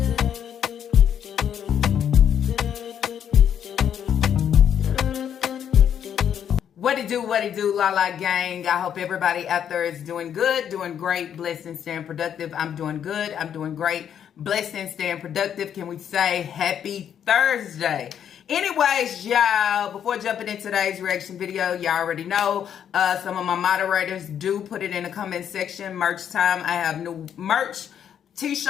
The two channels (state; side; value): quieter; right; 9.0 dB